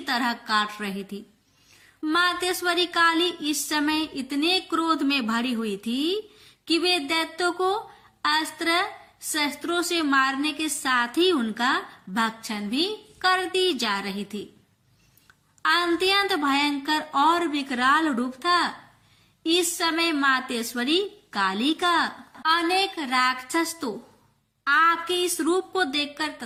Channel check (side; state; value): both; identical; correlation 1.00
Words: तरह काट रही थी। मातेश्वरी काली इस समय इतने क्रोध में भरी हुई थी कि वे दैत्यों को अस्त्र शस्त्रों से मारने के साथ ही उनका भक्षण भी करती जा रही थी। अत्यंत भयंकर और विकराल रूप था। इस समय मातेश्वरी काली का अनेक राक्षस तो आपके इस रूप को देखकर